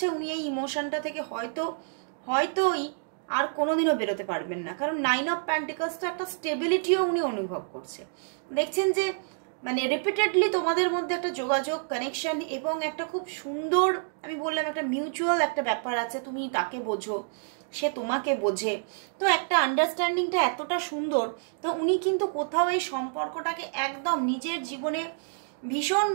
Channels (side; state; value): left; silent; digital silence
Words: উনি এই ইমোশনটা থেকে হয়তোই আর কোনোদিনও বেরোতে পারবেন না। কারণ 9 অফ পেন্টিকলস তো একটা স্টেবিলিটিও উনি অনুভব করছে। দেখছেন যে মানে রিপিটেডলি তোমাদের মধ্যে একটা যোগাযোগ, কানেকশন, এবং একটা খুব সুন্দর, আমি বললাম একটা মিউচুয়াল একটা ব্যাপার আছে, তুমি তাকে বোঝো, সে তোমাকে বোঝে, তো একটা আন্ডারস্ট্যান্ডিংটা এতটা সুন্দর। তো উনি কিন্তু কোথাও এই সম্পর্কটাকে একদম নিজের জীবনে ভীষণ